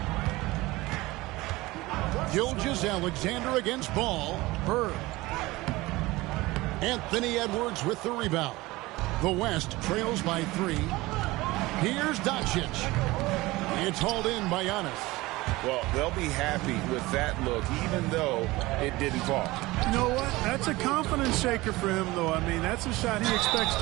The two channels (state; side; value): quieter; left; 20.2 dB